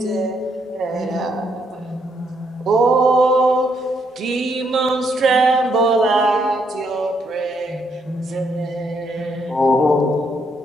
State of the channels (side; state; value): both; normal; correlation 0.74